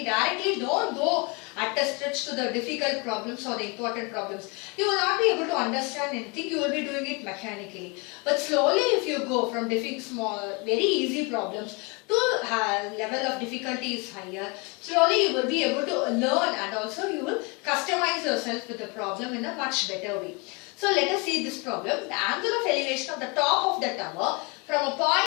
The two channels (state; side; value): quieter; right; 30.0 dB